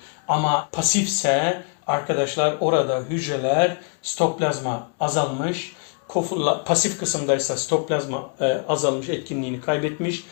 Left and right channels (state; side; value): quieter; right; 39.9 dB